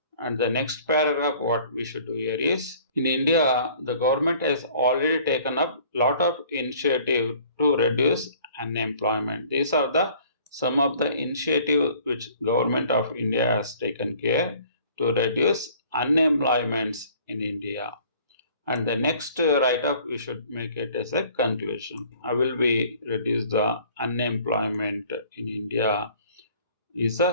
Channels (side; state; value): both; inverted; correlation -0.53